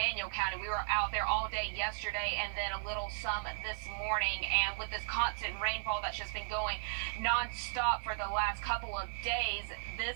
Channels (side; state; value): left; silent; 54 dB below the other